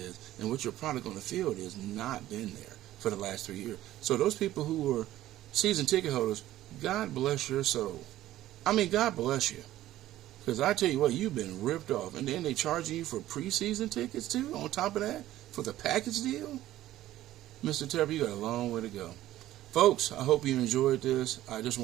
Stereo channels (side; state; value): left; quieter; 14.3 dB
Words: and what your product on the field is. Not been there for the last 3 years. So those people who are season ticket holders, God bless your soul. I mean, God bless you. Because I tell you what, you've been ripped off. And then they charging you for preseason tickets too, on top of that, for the package deal? Mr. Tepper, you got a long way to go. Folks, I hope you enjoyed this. I just